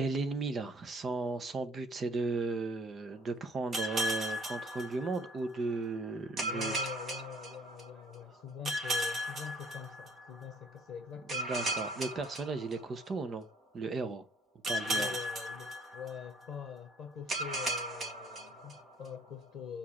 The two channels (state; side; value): normal; both; correlation 0.58